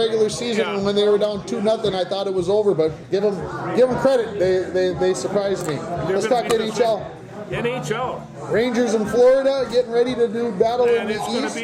season, Yeah. and when they were down 2-0, I thought it was over. But give them credit. They surprised me. Let's talk NHL. NHL. Rangers in Florida getting ready to do battle in And the it's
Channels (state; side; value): identical; both; correlation 1.00